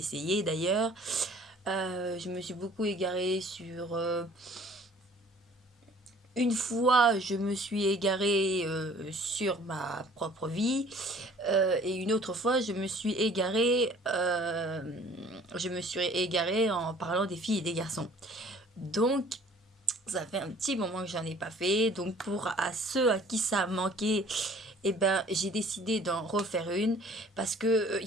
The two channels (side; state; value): both; normal; correlation 0.53